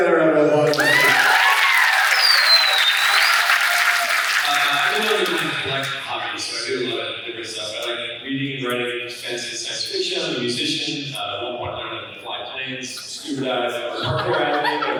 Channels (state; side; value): identical; both; correlation 1.00